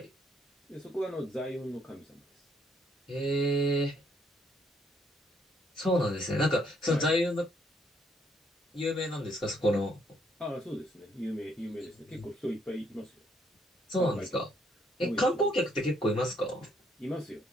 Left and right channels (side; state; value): both; normal; correlation 0.69